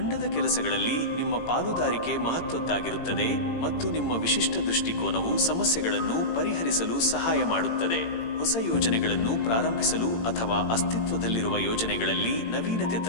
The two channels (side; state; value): right; late; 18 ms